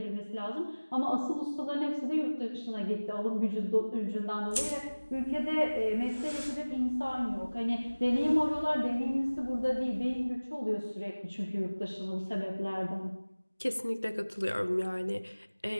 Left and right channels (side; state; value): both; inverted; correlation -1.00